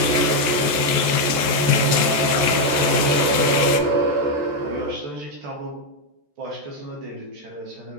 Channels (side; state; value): left; late; 14 ms